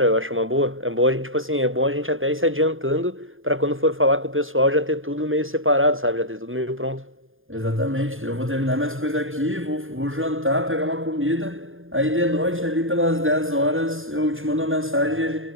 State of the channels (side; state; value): left; late; 0.59 ms